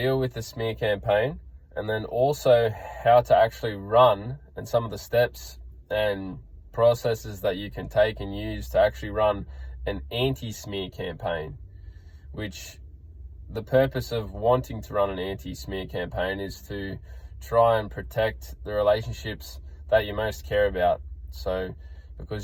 with the smear campaign, and then also how to actually run and some of the steps and processes that you can take and use to actually run an anti-smear campaign, which the purpose of wanting to run an anti-smear campaign is to try and protect the relationships that you most care about. So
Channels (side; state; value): both; identical; correlation 1.00